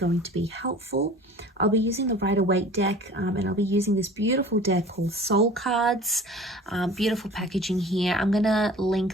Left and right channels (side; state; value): both; normal; correlation 0.43